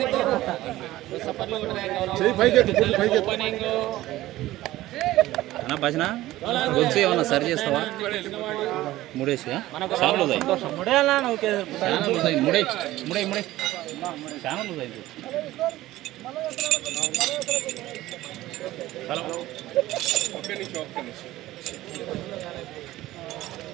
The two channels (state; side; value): quieter; left; 16.1 dB